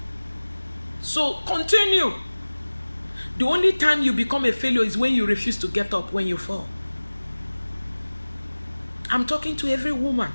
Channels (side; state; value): both; inverted; correlation -1.00